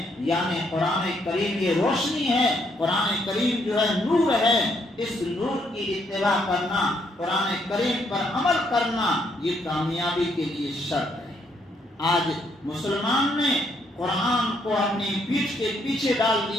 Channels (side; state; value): both; normal; correlation 0.72